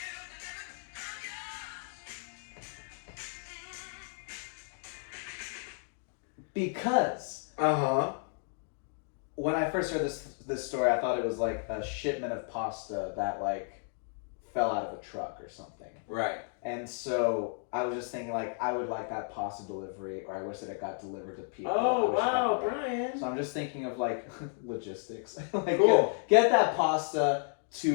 Because when I first heard this story, I thought it was like a shipment of pasta that like fell out of a truck or something. Right. And so I was just thinking like I would like that pasta delivery, or I wish that it got delivered to people. Oh wow, Brian. So I'm just thinking of like logistics. Like cool. Get that pasta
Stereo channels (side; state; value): right; silent; 56 dB below the other